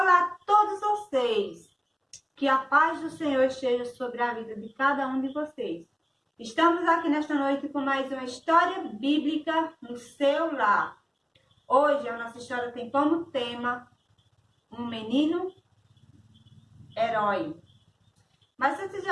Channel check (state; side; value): identical; both; correlation 1.00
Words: a todos vocês! Que a paz do Senhor esteja sobre a vida de cada um de vocês. Estamos aqui nesta noite com mais uma história bíblica no seu lar. Hoje a nossa história tem como tema um menino herói. Mas antes de